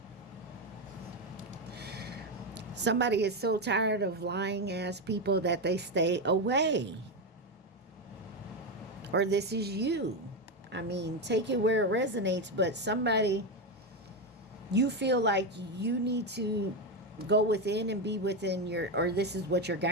Somebody is so tired of lying ass people that they stay away. Or this is you. I mean, take it where it resonates, but somebody, you feel like you need to go within and be within your, or this is what your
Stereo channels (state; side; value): normal; both; correlation 0.10